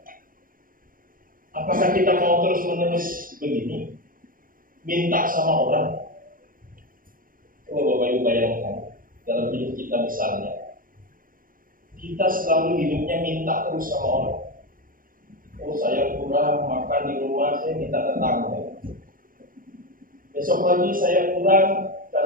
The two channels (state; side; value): late; left; 0.41 ms